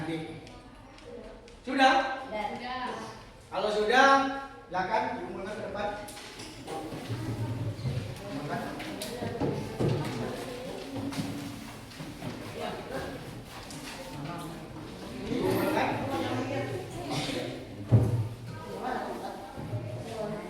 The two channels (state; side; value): identical; both; correlation 1.00